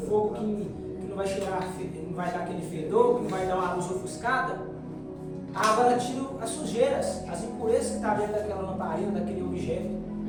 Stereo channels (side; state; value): both; identical; correlation 1.00